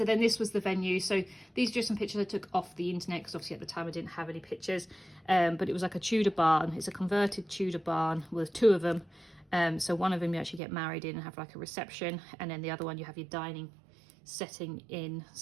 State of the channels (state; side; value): drops out; left; at 10.6 s